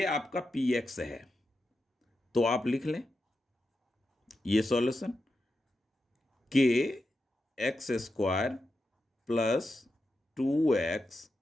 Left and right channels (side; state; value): both; normal; correlation 0.88